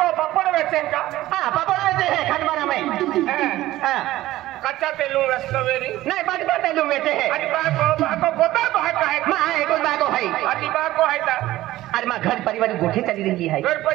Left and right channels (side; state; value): left; quieter; 15.9 dB